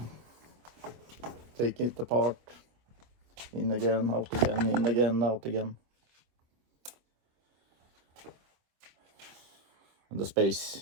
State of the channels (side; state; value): left; late; 25 ms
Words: taking it apart, in again, out again, in again, out again. And the space